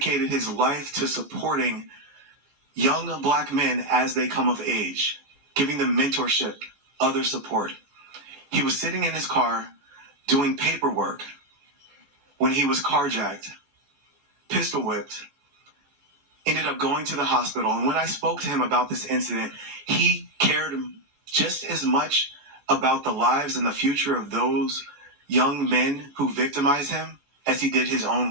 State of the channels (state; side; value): late; left; 15 ms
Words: his life to supporting young black men as they come of age, giving them mentorship, other support. He was sitting in his car doing paperwork when he was carjacked, pistol whipped, ended up going to the hospital. And when I spoke to him about this incident, he cared just as much about the lives and the future of those young men who victimized him as he did his own